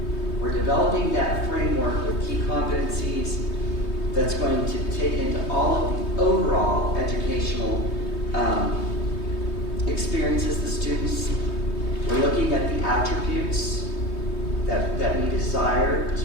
We're developing that framework with key competencies that's going to take into all of the overall educational experiences the students. We're looking at the attributes that we desire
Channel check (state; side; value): late; right; 3.2 ms